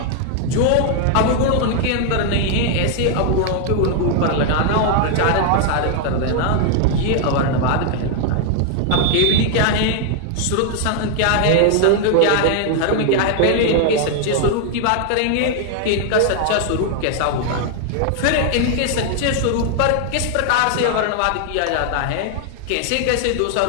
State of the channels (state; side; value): different; both; correlation 0.00